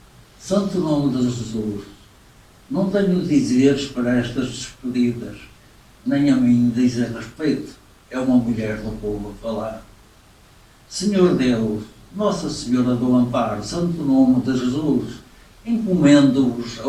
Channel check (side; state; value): both; identical; correlation 1.00